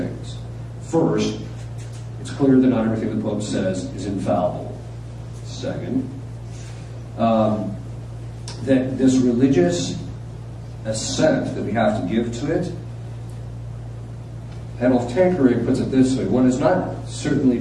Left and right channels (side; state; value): both; identical; correlation 1.00